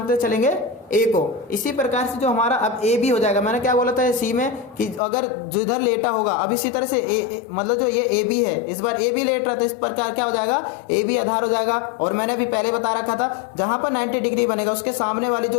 चलेंगे, ए को। इसी प्रकार से जो हमारा अब ए बी हो जाएगा, मैंने क्या बोला था सी में कि अगर जिधर लेटा होगा, अब इसी तरह से मतलब जो ये ए बी है, इस बार ए बी लेट रहा था, इस प्रकार क्या हो जाएगा, ए बी आधार हो जाएगा। और मैंने अभी पहले बता रखा था, जहां पर 90 डिग्री बनेगा उसके सामने वाली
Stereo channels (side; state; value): right; drops out; at 5.0 s